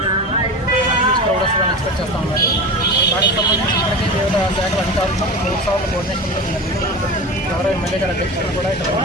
క్రౌడస్లను ఎక్స్పెక్ట్ చేస్తూ ఉన్నారు. దానికి సంబంధించి ఇప్పటికీ వివిధ శాఖల అధికారులతో 3 సార్లు కోఆర్డినేషన్ జరిగింది. గౌరవ ఎమ్మెల్యే గారి అధ్యక్షతను కూడా ఇక్కడ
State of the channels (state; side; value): normal; both; correlation 0.29